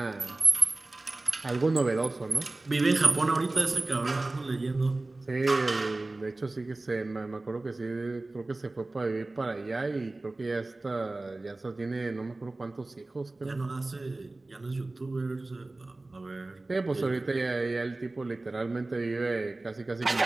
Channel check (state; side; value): quieter; left; 3.0 dB